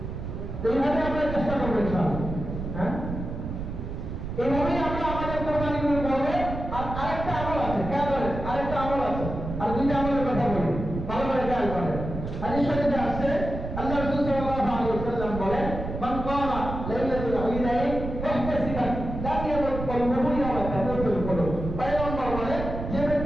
এইভাবে আমরা চেষ্টা করবো ইনশাআল্লাহ। হ্যাঁ, এইভাবেই আমরা আমাদের কোরবানিগুলো করবো। আর আরেকটা আমল আছে, খেয়াল করেন, আরেকটা আমল আছে, আর 2টা আমলের কথা বলি, ভালো করে খেয়াল করেন। হাদিস শরীফে আসছে, আল্লাহ রাসূল সাল্লাল্লাহু আলাইহি ওয়াসাল্লাম বলেন, মান কামা লাইলাতুল ঈদাইন মুহতাসিবান লা ইয়ামুত কলবুহু ইয়াওমা তামুতুল কুলুব। পয়গম্বর বলেন, যে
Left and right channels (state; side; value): noise; right; rumble, 6 dB below the sound